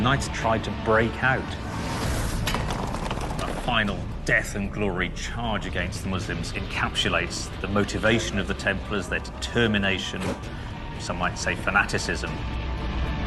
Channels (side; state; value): both; identical; correlation 1.00